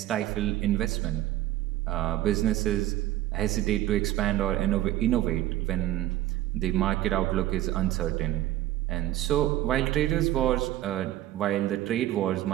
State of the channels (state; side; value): quieter; left; 14.2 dB